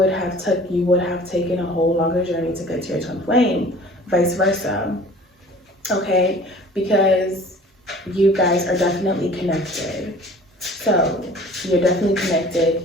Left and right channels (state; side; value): normal; both; correlation 0.47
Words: have taken a whole longer journey to get to your twin flame. Vice versa, okay? Because you guys are definitely connected. So you're definitely connected.